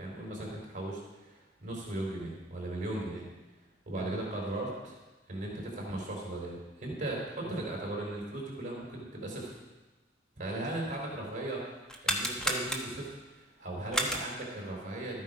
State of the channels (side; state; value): both; normal; correlation 0.45